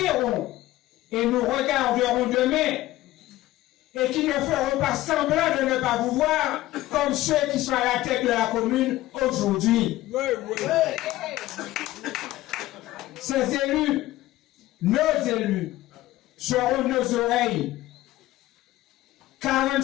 et nous regarderont demain et qui ne feront pas semblant de ne pas vous voir comme ceux qui sont à la tête de la commune aujourd'hui. Ces élus, nos élus, seront nos oreilles.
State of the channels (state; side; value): quieter; right; 16.3 dB